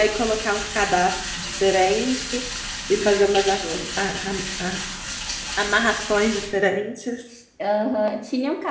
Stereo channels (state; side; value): identical; both; correlation 1.00